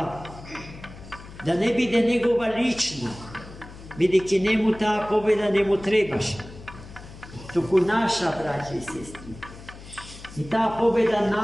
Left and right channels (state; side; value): noise; left; hum, 17 dB below the sound